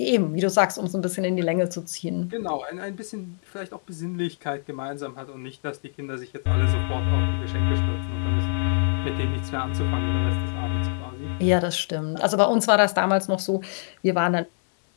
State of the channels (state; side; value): silent; right; digital silence